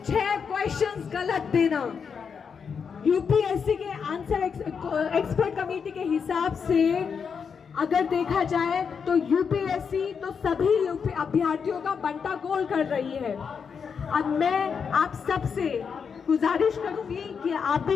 6 क्वेश्चंस गलत देना। यूपीएससी के आंसर एक्सपर्ट कमेटी के हिसाब से अगर देखा जाए तो यूपीएससी तो सभी अभ्यर्थियों का बंटा गोल कर रही है। अब मैं आप सबसे गुजारिश करूंगी कि आप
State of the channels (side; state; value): right; quieter; 6.3 dB